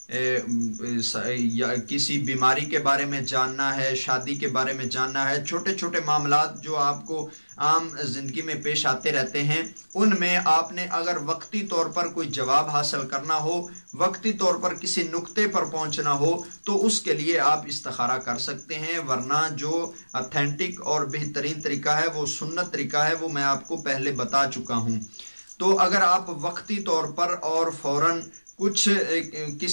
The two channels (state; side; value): inverted; both; correlation -1.00